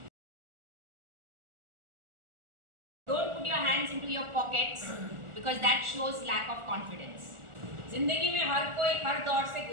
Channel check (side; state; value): left; late; 1.4 ms